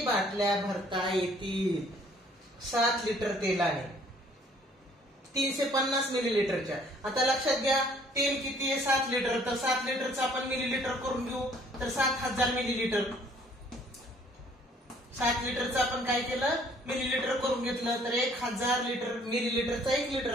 बाटल्या भरता येतील? 7 लिटर तेलाने 350 मिलीलिटरच्या. आता लक्षात घ्या तेल किती आहे? 7 लिटर. तर 7 लिटरचं आपण मिलीलिटर करून घेऊ. तर 7000 मिलीलिटर. 7 लिटरचं आपण काय केलं? मिलीलिटर करून घेतलं. तर 1000 लिटर मिलीलिटरचा 1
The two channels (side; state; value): both; normal; correlation 0.59